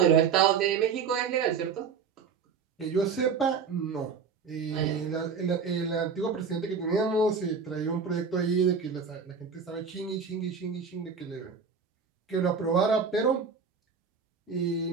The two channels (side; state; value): left; quieter; 5.9 dB